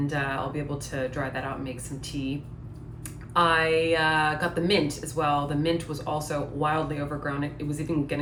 I'll be able to dry that out and make some tea. I got the mint as well. The mint was also wildly overgrown. It was even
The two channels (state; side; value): identical; both; correlation 1.00